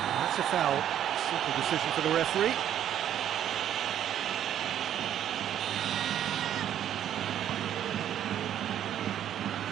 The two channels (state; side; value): quieter; left; 10.5 dB